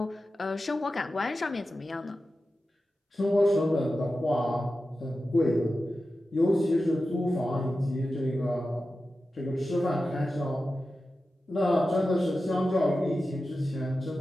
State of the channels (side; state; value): both; normal; correlation 0.93